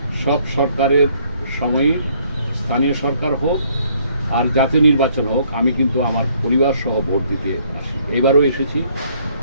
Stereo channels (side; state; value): both; inverted; correlation -0.65